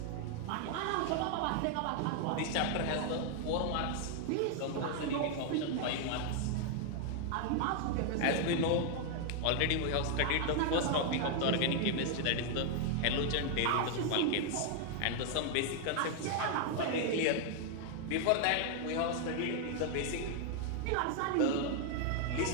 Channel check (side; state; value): both; different; correlation 0.00